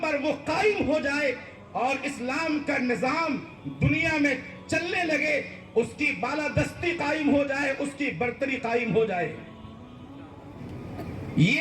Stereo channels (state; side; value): identical; both; correlation 1.00